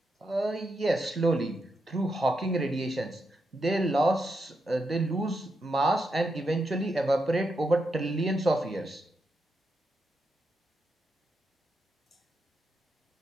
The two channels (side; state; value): both; normal; correlation 0.84